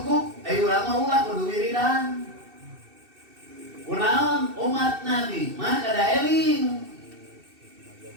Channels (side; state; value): left; late; 2.7 ms